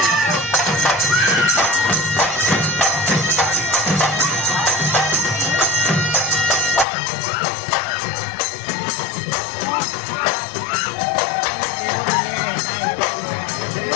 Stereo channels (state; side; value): drops out; right; at 6.9 s